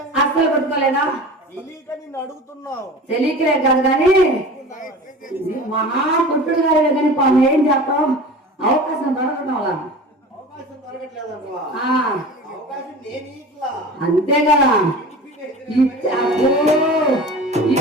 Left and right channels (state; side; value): normal; both; correlation 0.36